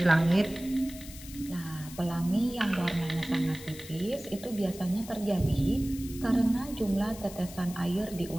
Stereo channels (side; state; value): left; noise; hiss, 15 dB below the sound